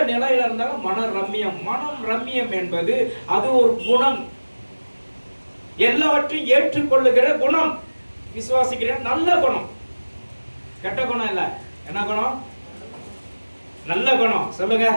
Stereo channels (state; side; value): inverted; both; correlation -1.00